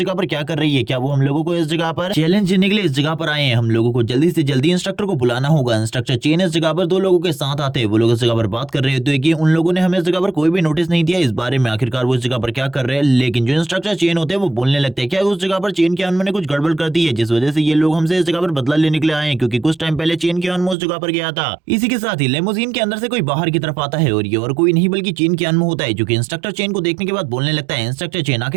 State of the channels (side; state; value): left; drops out; at 20.8 s